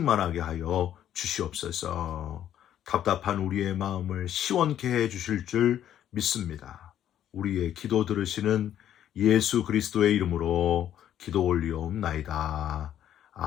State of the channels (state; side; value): quieter; right; 10.9 dB